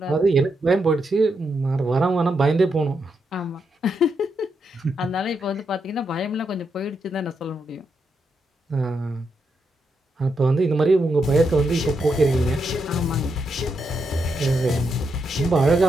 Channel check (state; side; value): normal; both; correlation 0.82